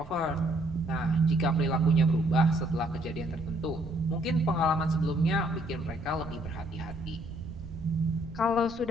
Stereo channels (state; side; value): noise; right; rumble, 15 dB below the sound